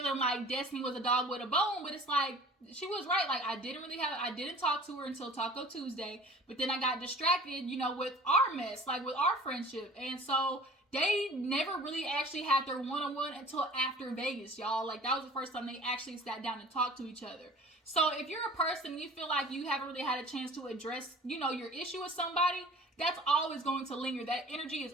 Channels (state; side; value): normal; both; correlation 0.45